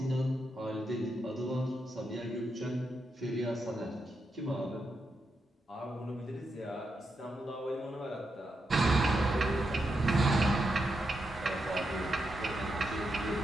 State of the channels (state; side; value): normal; both; correlation 0.84